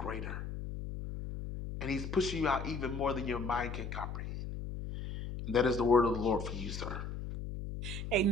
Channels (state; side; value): noise; left; hum, 6 dB below the sound